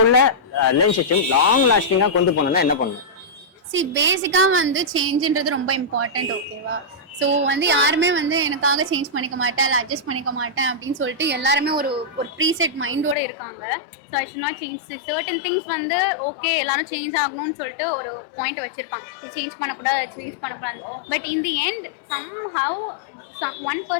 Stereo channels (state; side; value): drops out; right; at 13.2 s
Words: உள்ள ரிலேஷன்ஷிப் லாங் லாஸ்டிங்கா கொண்டு போகணும்னா என்ன பண்ணணும்? See பேசிக்கா வந்து சேஞ்ச்ன்றது ரொம்ப இம்பார்ட்டன்ட், ஓகேவா? ஸோ வந்து யாருமே வந்து எனக்காக சேஞ்ச் பண்ணிக்க மாட்டேன் இல்லை அட்ஜஸ்ட் பண்ணிக்க மாட்டேன் அப்படின்னு சொல்லிட்டு எல்லாருமே ஒரு ப்ரீசெட் மைண்டோட இருக்காங்க. So I should not change certain things. வந்து ஓகே எல்லாரும் சேஞ்ச் ஆகணும்னு சொல்லிட்டு ஒரு பாயிண்ட் வச்சிருப்பாங்க, இது சேஞ்ச் பண்ணக்கூடாது, சேஞ்ச் பண்ணக்கூடாது. But in the end somehow one